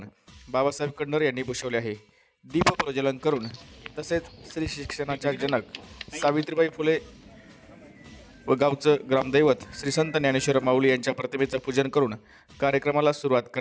बाबासाहेब कडनर यांनी भूषवले आहे। दीप प्रज्वलन करून तसेच श्री शिक्षणाच्या जनक सावित्रीबाई फुले व गावचं ग्रामदैवत श्री संत ज्ञानेश्वर माऊली यांच्या प्रतिमेचं पूजन करून कार्यक्रमाला सुरुवात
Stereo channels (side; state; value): both; identical; correlation 1.00